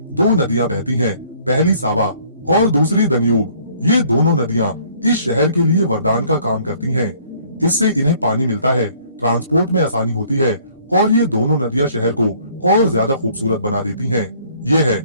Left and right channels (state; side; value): inverted; both; correlation -0.59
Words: 2 नदियां बहती हैं, पहली सावा और दूसरी दन्यूब। ये दोनों नदियां इस शहर के लिए वरदान का काम करती हैं। इससे इन्हें पानी मिलता है, ट्रांसपोर्ट में आसानी होती है, और ये दोनों नदियां शहर को और ज्यादा खूबसूरत बना देती हैं। ये है